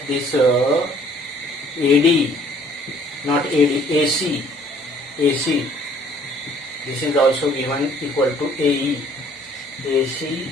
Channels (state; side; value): normal; both; correlation 0.58